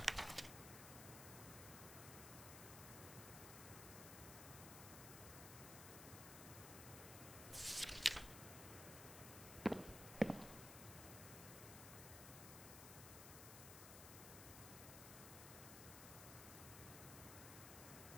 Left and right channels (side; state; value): left; noise; hiss, 8 dB below the sound